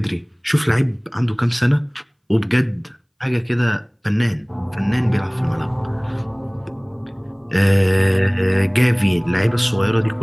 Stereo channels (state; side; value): identical; both; correlation 1.00